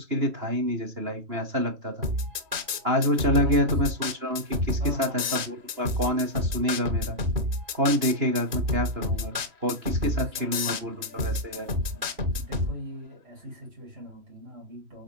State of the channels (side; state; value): left; late; 3.0 ms